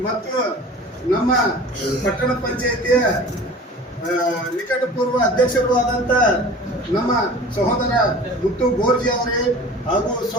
ಮತ್ತು ನಮ್ಮ ಪಟ್ಟಣ ಪಂಚಾಯಿತಿಯ ನಿಕಟಪೂರ್ವ ಅಧ್ಯಕ್ಷರು ಆದಂತ ನಮ್ಮ ಸಹೋದರ ಮುತ್ತು ಗೋರ್ಜಿ ಅವರೇ ಹಾಗೂ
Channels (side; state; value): both; normal; correlation 0.41